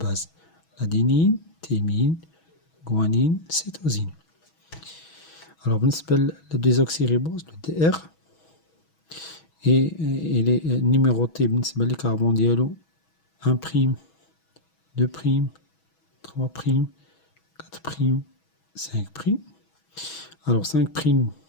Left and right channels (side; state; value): right; late; 6.2 ms